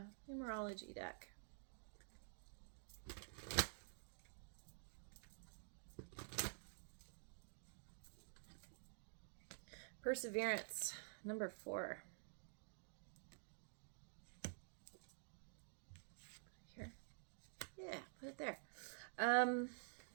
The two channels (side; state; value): left; silent; digital silence